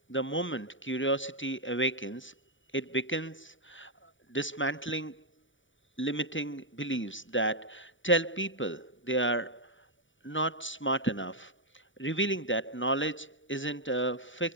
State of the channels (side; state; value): right; late; 0.56 ms